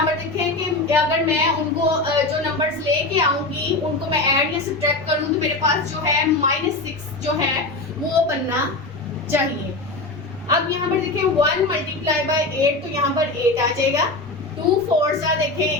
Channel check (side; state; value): right; quieter; 3.0 dB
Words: पर देखें कि अगर मैं उनको जो नंबर्स लेके आऊँगी उनको मैं ऐड या सब्ट्रैक्ट करूँ तो मेरे पास जो है -6 जो है वो बनना चाहिए। अब यहाँ पर देखें 1 मल्टीप्लाई बाय 8 तो यहाँ पर 8 आ जाएगा। 2 4 सा